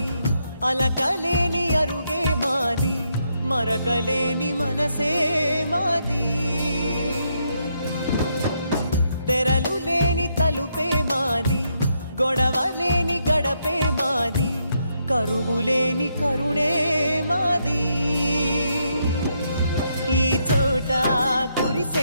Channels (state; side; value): inverted; both; correlation -0.77